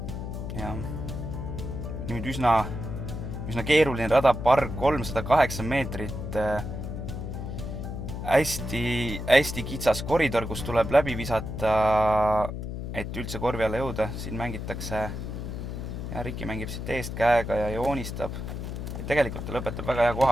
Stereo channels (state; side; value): noise; left; hum, 6 dB below the sound